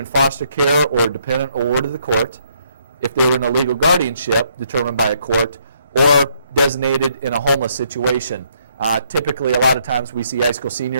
foster care or dependent or ward of the court, if they were in a legal guardianship determined by a court, or designated in a homeless situation Typically, a lot of times we see high school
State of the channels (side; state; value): both; inverted; correlation -0.71